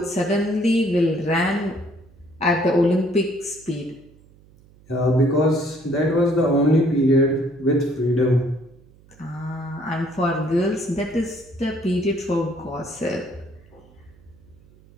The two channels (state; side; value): noise; right; hum, 27 dB below the sound